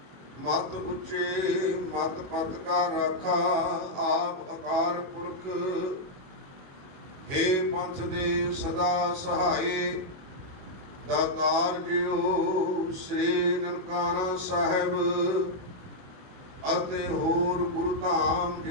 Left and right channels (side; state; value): left; late; 21 ms